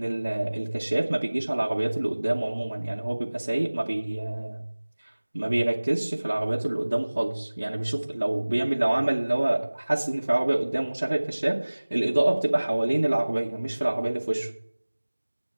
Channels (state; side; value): inverted; both; correlation -1.00